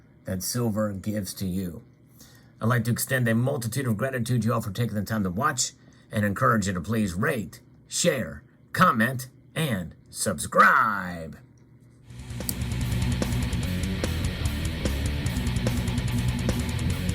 that silver gives to you. I'd like to extend a multitude of gratitude to you all for taking the time to watch, and encourage you to please rate, share, comment, and subscribe.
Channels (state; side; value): identical; both; correlation 1.00